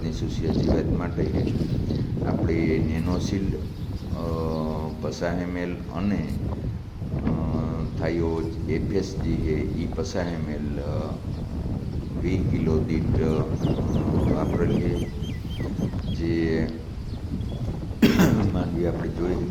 સુસિયા જીવાત માટે આપણે નેનોશિલ્ડ 50 ml અને થાયો FS જે છે એ 50 ml 20 કિલો દીઠ વાપરેલ છે. જે માંડવી આપણે જોઈ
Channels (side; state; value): both; identical; correlation 1.00